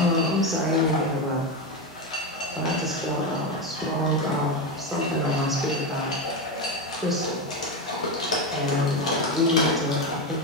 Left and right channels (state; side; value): normal; both; correlation 0.13